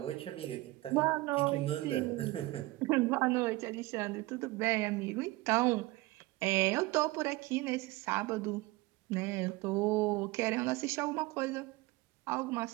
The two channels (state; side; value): quieter; left; 20.3 dB